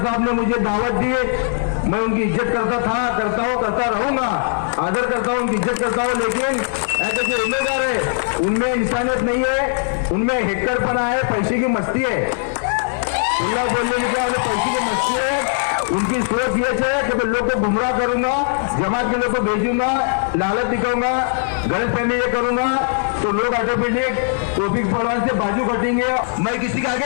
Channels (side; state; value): right; silent; 66 dB below the other